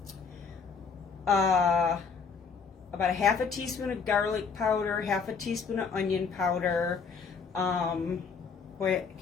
about a half a teaspoon of garlic powder, half a teaspoon of onion powder. Boy,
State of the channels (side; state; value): right; quieter; 5.5 dB